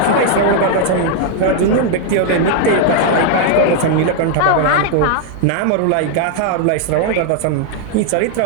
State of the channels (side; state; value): both; different; correlation 0.00